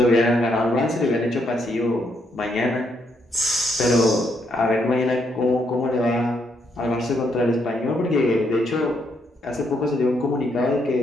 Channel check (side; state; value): both; normal; correlation 0.75